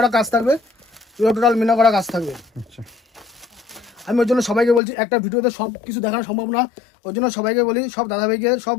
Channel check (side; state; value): right; drops out; at 4.8 s